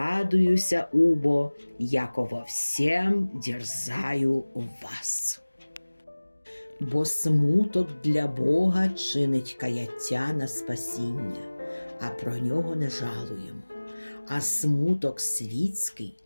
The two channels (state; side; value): inverted; both; correlation -1.00